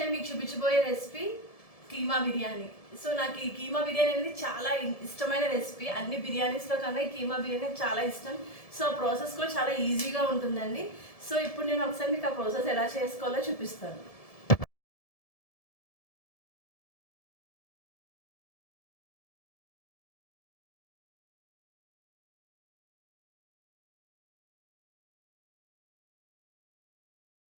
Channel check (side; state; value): right; late; 1.7 ms